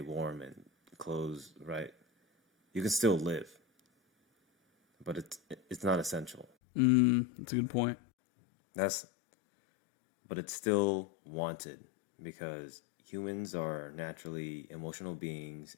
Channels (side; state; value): right; drops out; at 6.5 s